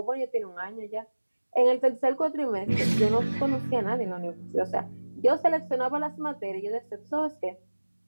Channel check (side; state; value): both; inverted; correlation -1.00